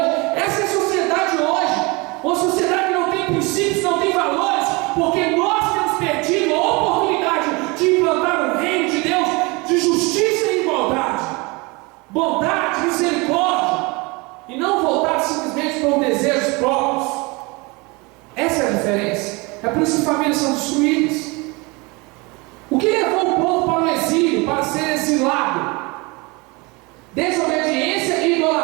Essa é a sociedade hoje, uma sociedade que não tem princípios, não tem valores, porque nós temos perdido a oportunidade de implantar o reino de Deus, de justiça e igualdade, bondade, misericórdia, e não voltar simplesmente para desejos próprios. Essa é a diferença. É por isso que famílias são destruídas. O que levou o povo para o exílio, para ser exilado? Desobediência,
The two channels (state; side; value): quieter; left; 26.4 dB